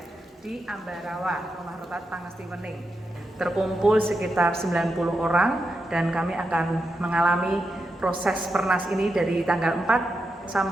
di Ambarawa, Rumah Retret Pangesti Wening. Terkumpul sekitar 90 orang dan kami akan mengalami proses Pernas ini dari tanggal 4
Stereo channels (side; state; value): both; normal; correlation 0.86